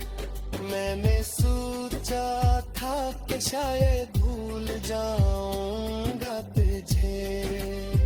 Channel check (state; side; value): identical; both; correlation 1.00